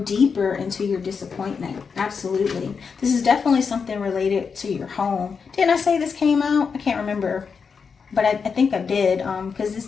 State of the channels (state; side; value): quieter; right; 5.7 dB